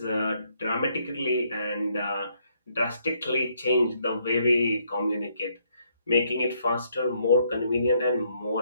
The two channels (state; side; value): inverted; both; correlation -0.72